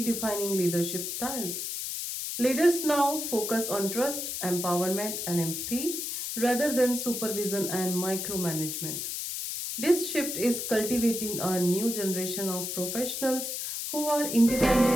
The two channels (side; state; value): left; noise; hiss, 4 dB below the sound